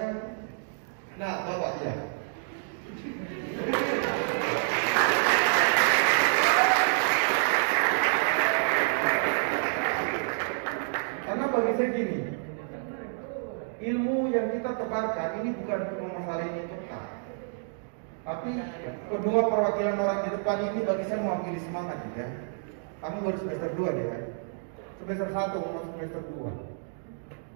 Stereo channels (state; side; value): silent; left; digital silence